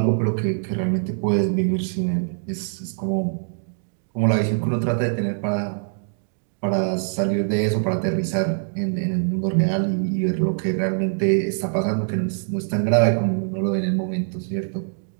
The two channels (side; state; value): left; silent; digital silence